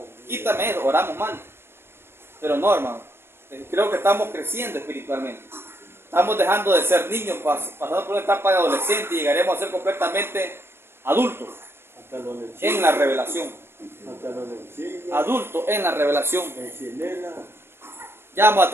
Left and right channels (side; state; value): left; late; 0.12 ms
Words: Quítame eso, oramos mal. Pero no, hermano. Creo que estamos creciendo espiritualmente. Estamos dejando de ser niños, pasando por una etapa de adolescente y llegaremos a ser completamente adultos Hasta donde en la revelación. hasta donde sigue, Adultos en la revelación. en Chilena. Ya vamos a